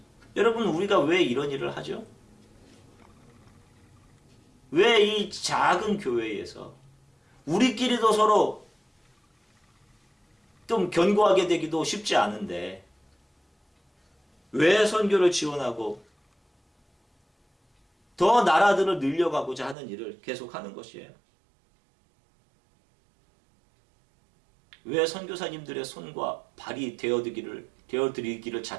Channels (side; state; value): left; drops out; at 19.8 s